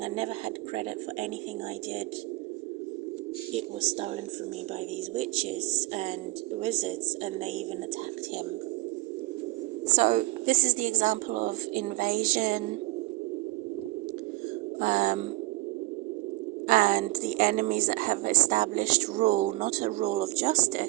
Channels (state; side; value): quieter; left; 20.6 dB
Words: I never had credit for anything I did. It was stolen from me by these witches and wizards, and they even attacked him. So this is the example of invasion, and the enemies that have established rule, not a rule of